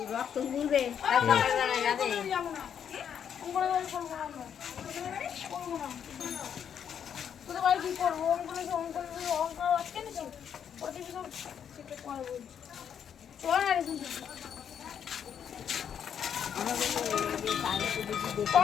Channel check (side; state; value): right; quieter; 8.3 dB